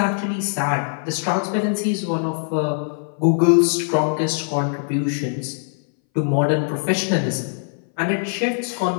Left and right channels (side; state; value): right; silent; 61 dB below the other